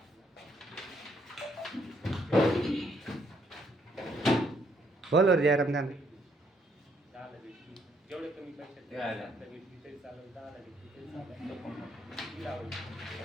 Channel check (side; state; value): both; normal; correlation 0.70